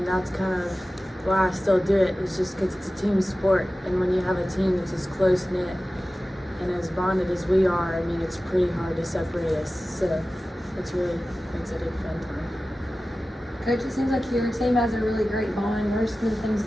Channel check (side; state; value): both; normal; correlation 0.95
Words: that's kind of why I still do it. It's just because it's a team sport, and when you have a team that's as close knit and as bonded as we are, I mean, it's pretty hard to separate us. So it's really makes it a fun time. Coach, it seems like your team has a really great bond. What are some of the things